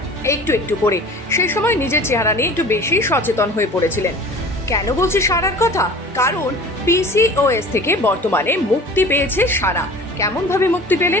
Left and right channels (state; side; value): normal; both; correlation 0.42